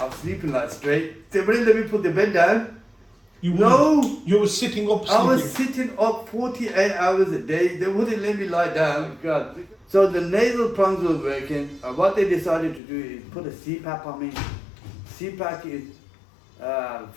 sleeping like straight. They wouldn't let me put the bed down. You were sitting up sleeping. I was sitting up 48 hours a day. They wouldn't let me lie down. God. So the nasal prongs were working. What they decided to do is put a CPAP on me. CPAP is,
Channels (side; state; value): right; drops out; at 12.8 s